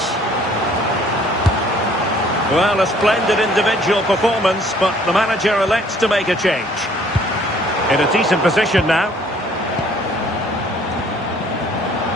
Well, a splendid individual performance, but the manager elects to make a change. In a decent position now.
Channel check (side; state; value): both; normal; correlation 0.58